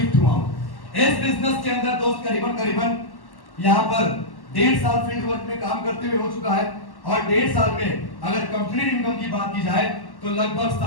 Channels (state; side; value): late; right; 1.1 ms